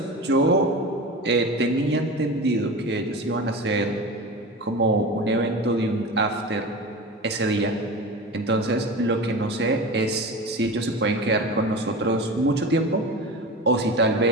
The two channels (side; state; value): both; normal; correlation 0.29